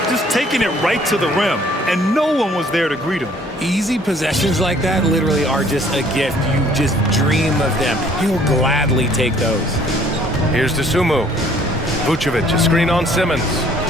Just taking it right to the rim, and no one was there to greet him. Easy possessions like that literally are just a gift. You just dream of them. He'll gladly take those. Here's Dosunmu. Vucevic, a screen on Simmons.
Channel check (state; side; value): normal; both; correlation 0.58